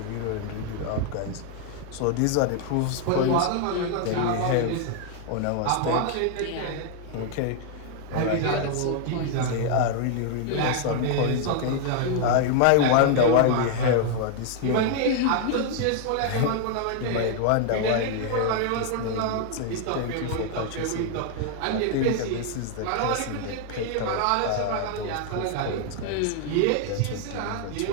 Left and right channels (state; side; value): different; both; correlation 0.00